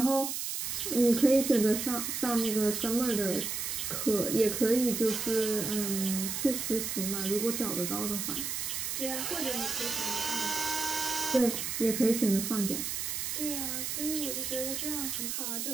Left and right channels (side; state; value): right; noise; hiss, 3 dB below the sound